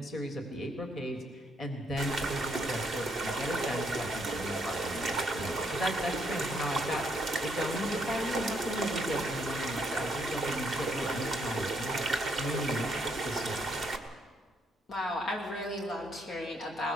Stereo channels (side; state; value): both; normal; correlation 0.72